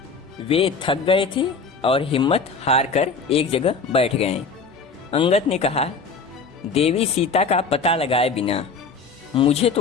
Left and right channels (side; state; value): right; quieter; 4.6 dB